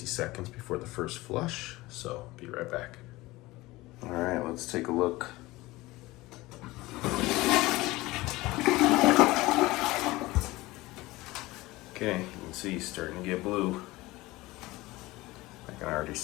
seconds before the first flush, so be right back. All right, let's take a look. Okay, you can see it's starting to get blue. I can already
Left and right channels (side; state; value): right; quieter; 19.8 dB